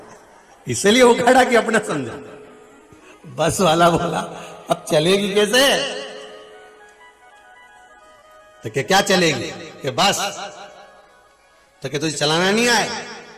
इसलिए उखाड़ा कि अपना समझा। बस वाला बोला अब चलेगी कैसे? तो क्या चलेगी कि बस, तो क्या तुझे चलाना नहीं आए?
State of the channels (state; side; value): identical; both; correlation 1.00